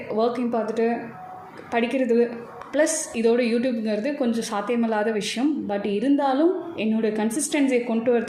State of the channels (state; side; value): identical; both; correlation 1.00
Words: ஒர்க்கையும் பார்த்துட்டு படிக்கிறது ப்ளஸ் இதோட யூடியூப்ங்கிறது கொஞ்சம் சாத்தியமில்லாத விஷயம். பட் இருந்தாலும் என்னோடய கன்சிஸ்டன்சியை கொண்டு